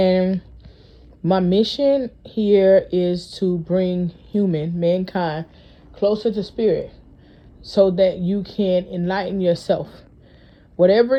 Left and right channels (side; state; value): both; identical; correlation 1.00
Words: my mission here is to bring mankind, closer to spirit so that you can enlighten yourself. Whatever